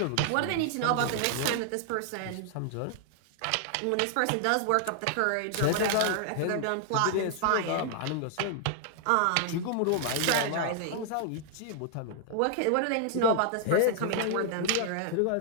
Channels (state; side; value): different; both; correlation -0.01